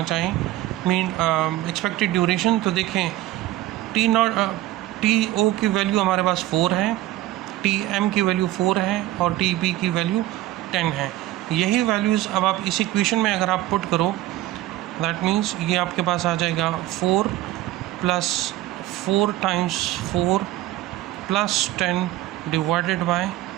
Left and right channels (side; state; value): left; quieter; 15.5 dB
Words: चाहें मीन एक्सपेक्टेड ड्यूरेशन, तो देखें TO की वैल्यू हमारे पास 4 है, TM की वैल्यू 4 है और TB की वैल्यू 10 है। यही वैल्यूज़ अब आप इस इक्वेशन में अगर आप पुट करो, दैट मीन्स ये आपके पास आ जाएगा 4 plus 4 times 4 plus 10 divided by